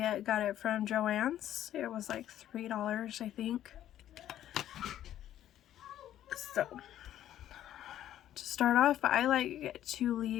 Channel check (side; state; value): right; quieter; 12.0 dB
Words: got it from Joann's. It was like $3, I think. So, to start off, I like to